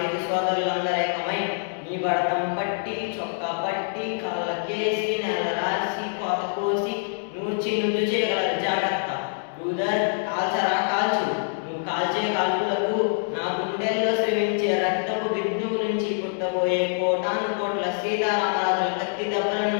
సోదరులందరేకమై నీ బడతం పట్టి చొక్కా పట్టి కాళ్ళకేసి నెల రాసి కోత కోసి నూర్చి నుద్దు చేయగలరు. జాగ్రత్త బ్రూదర్, కాల్చరా కాల్చు. నువ్వు కాల్చే కాల్పులకు నా గుండెల్లో శ్రమించే రక్తపు బిందువు నుంచి పుట్టబోయే కోటాను కోట్ల సీతారామరాజుల కత్తి దెబ్బలను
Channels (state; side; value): silent; right; digital silence